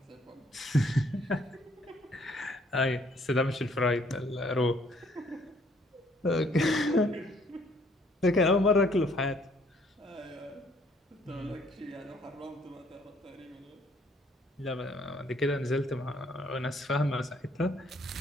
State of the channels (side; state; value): both; normal; correlation 0.64